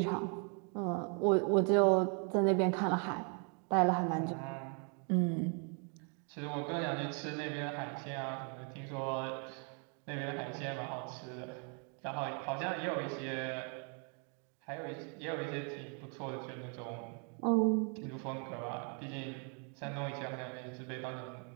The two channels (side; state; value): left; quieter; 38.5 dB